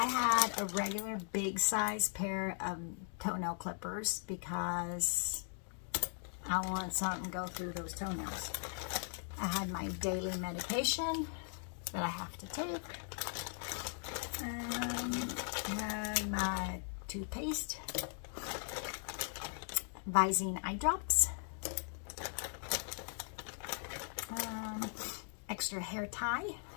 had a regular big size pair of toenail clippers because I wanted something to go through those toenails. I had my daily medication that I have to take. I had my toothpaste, Visine eye drops, extra hair tie,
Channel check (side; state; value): right; silent; 52 dB below the other